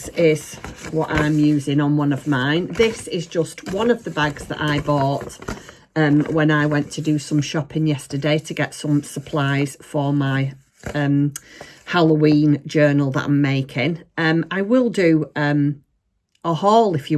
is what I'm using on one of mine. This is just one of the bags that I bought when I went to do some shopping yesterday to get some supplies for my Halloween journal that I'm making. I will do a haul if you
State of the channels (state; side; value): identical; both; correlation 1.00